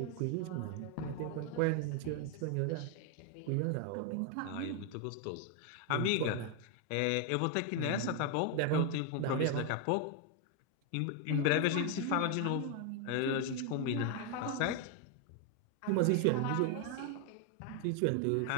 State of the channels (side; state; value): both; different; correlation 0.01